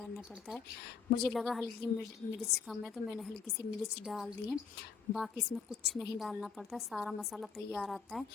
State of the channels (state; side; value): quieter; right; 6.1 dB